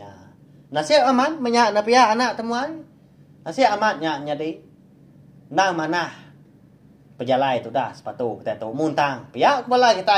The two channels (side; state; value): both; identical; correlation 1.00